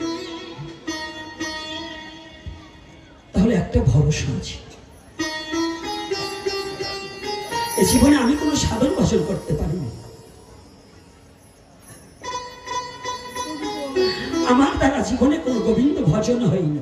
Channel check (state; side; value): identical; both; correlation 1.00